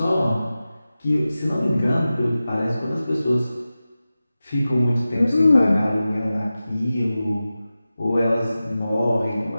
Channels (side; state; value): both; inverted; correlation -0.95